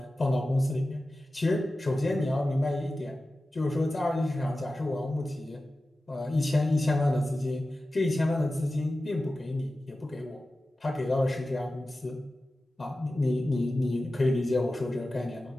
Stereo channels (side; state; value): both; normal; correlation 0.95